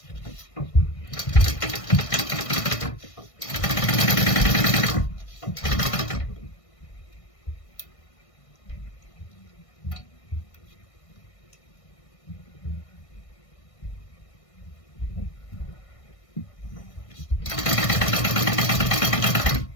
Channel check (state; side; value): late; right; 1.6 ms